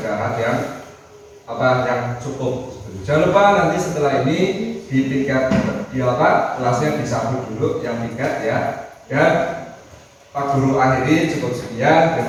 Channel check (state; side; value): identical; both; correlation 1.00